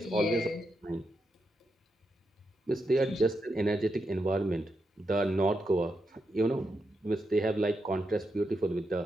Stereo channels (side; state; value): both; normal; correlation 0.85